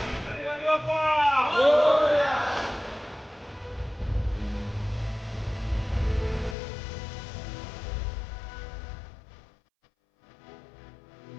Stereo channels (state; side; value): drops out; right; at 6.6 s